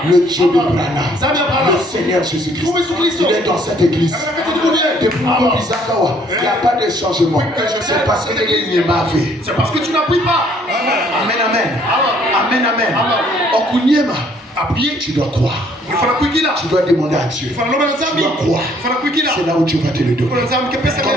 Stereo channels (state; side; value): normal; both; correlation 0.62